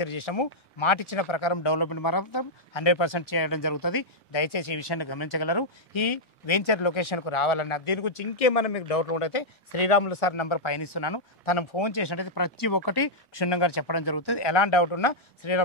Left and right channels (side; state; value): both; normal; correlation -0.06